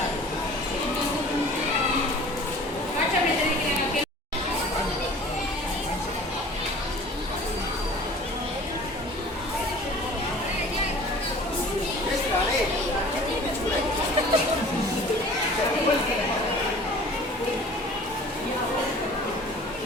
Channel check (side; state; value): both; normal; correlation 0.46